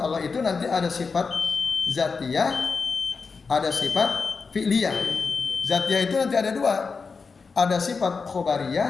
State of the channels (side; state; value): right; quieter; 4.9 dB